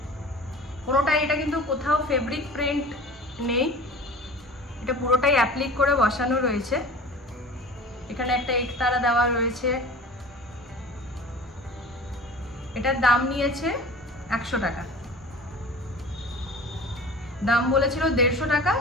পুরোটাই, এটা কিন্তু কোথাও ফেব্রিক প্রিন্ট নেই, এটা পুরোটাই অ্যাপ্লিক করে বসানো রয়েছে। এখানে একটা একতারা দেওয়া রয়েছে। এটার দাম নিয়েছে 100 টাকা। দাম বলেছিল 150 টাকা,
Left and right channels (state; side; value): normal; both; correlation 0.40